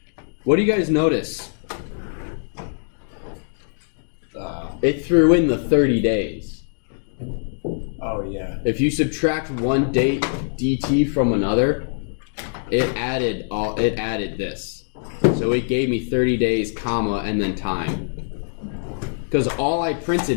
What do you guys notice? It threw in the 30 days. Oh yeah. If you subtract one date dt from another, it added this. So it gave me 30 days, comma, and then time. Because all I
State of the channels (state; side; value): silent; right; digital silence